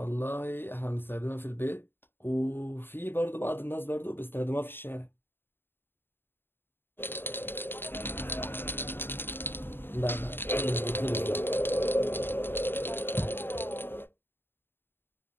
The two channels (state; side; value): late; right; 0.10 ms